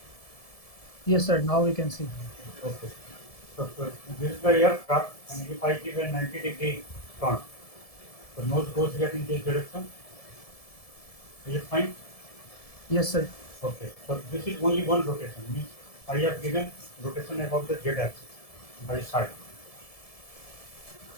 Yes, sir, now we can see. Okay. So this is the aircraft, and if I give a 90-degree turn, the nose goes here in this direction. Is it fine? Yes, sir. Okay. So this is only one rotation. Means I have given rotation about the z-axis by side.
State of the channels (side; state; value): right; late; 1.7 ms